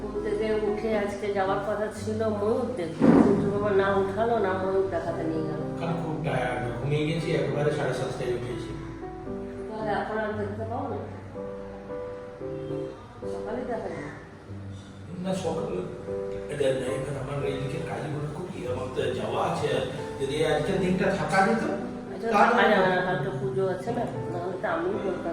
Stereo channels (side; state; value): both; identical; correlation 1.00